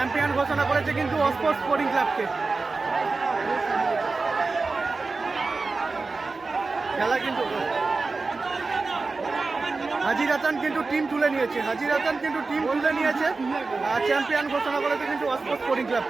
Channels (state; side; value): quieter; left; 3.9 dB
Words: ঘোষণা করেছে কিন্তু অস্পোর্ট স্পোর্টিং ক্লাবকে। খেলা কিন্তু হাজির হাসান কিন্তু টিম তুলে নিয়েছে, আর চ্যাম্পিয়ন ঘোষণা করেছে কিন্তু অস্পোর্ট স্পোর্টিং